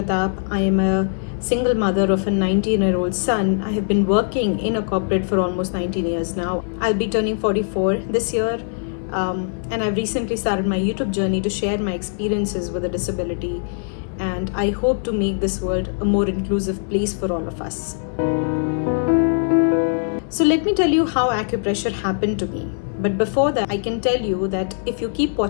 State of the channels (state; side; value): silent; right; 57 dB below the other